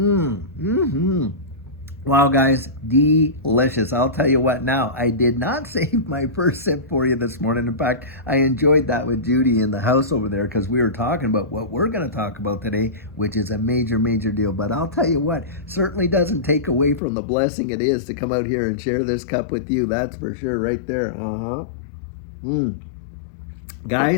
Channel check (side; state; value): right; drops out; at 17.0 s